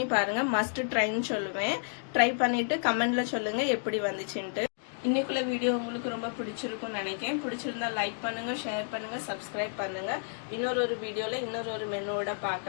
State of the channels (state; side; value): silent; right; digital silence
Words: பாருங்க. மஸ்ட் ட்ரைன்னு சொல்லுவேன். ட்ரை பண்ணிட்டு கமெண்ட்ல சொல்லுங்க எப்படி வந்துச்சுன்ட்டு. இன்னைக்குள்ள வீடியோ உங்களுக்கு ரொம்ப பிடிச்சிருக்கும்னு நினைக்கிறேன். பிடிச்சிருந்தா லைக் பண்ணுங்க, ஷேர் பண்ணுங்க, சப்ஸ்கிரைப் பண்ணுங்க. இன்னொரு வீடியோல இன்னொரு மெனுவோட